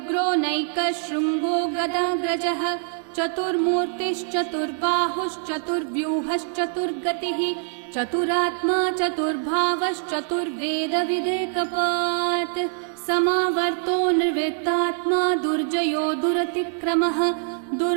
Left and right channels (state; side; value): silent; left; 63 dB below the other